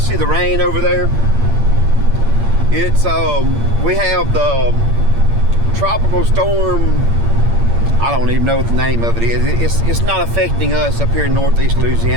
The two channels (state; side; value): late; left; 8.7 ms